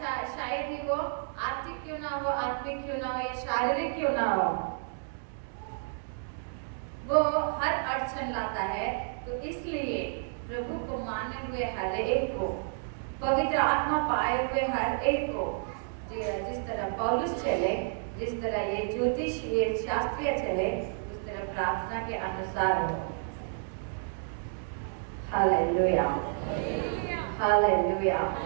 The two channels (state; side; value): silent; left; digital silence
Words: शायद ही वो आर्थिक क्यों ना हो, आत्मिक क्यों ना हो, या शारीरिक क्यों ना हो, वो हर अड़चन लाता है। तो इसलिए प्रभु को माने हुए हर एक को, पवित्र आत्मा पाए हुए हर एक को, जिस तरह पौलुस चले, जिस तरह ये ज्योतिष ये शास्त्रीय चले, उस तरह प्रार्थना के अनुसार हो। हालेलुया। हालेलुया।